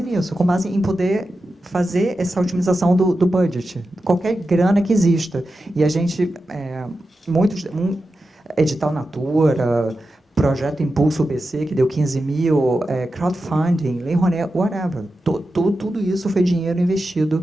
nisso, com base em poder fazer essa otimização do budget, qualquer grana que exista. E a gente, Edital Natura, Projeto Impulso BC, que deu 15 mil, crowdfunding, Lei Rouanet, whatever. Tudo isso foi dinheiro investido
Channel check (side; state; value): both; normal; correlation 0.91